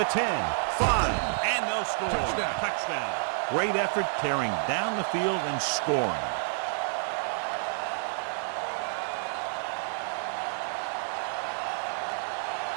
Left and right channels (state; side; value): silent; left; digital silence